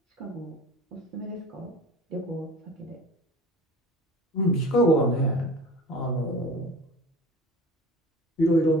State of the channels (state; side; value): normal; both; correlation 0.39